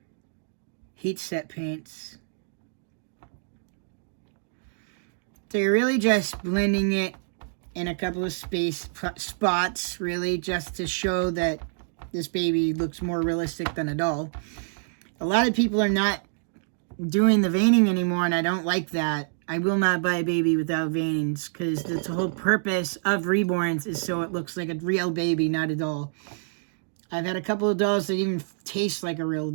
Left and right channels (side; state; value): left; silent; digital silence